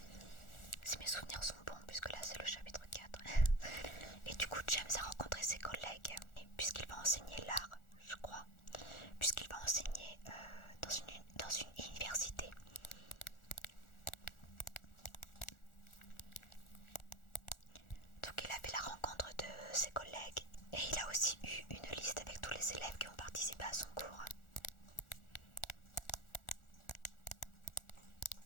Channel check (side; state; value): right; late; 1.4 ms